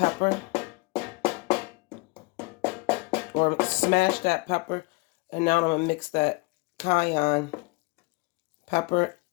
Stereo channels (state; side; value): quieter; right; 26.3 dB